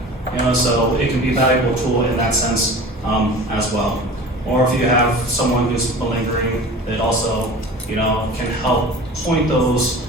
You know, so it can be a valuable tool in that sense as well. Or if you have someone who's malingering, it also, you know, can help point those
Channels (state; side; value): normal; both; correlation 0.38